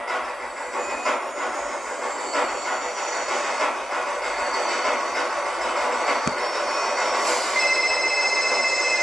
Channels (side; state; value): both; normal; correlation 0.92